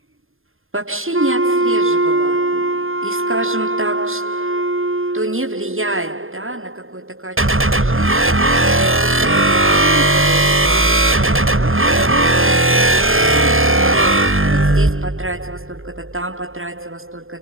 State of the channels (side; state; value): left; late; 0.60 ms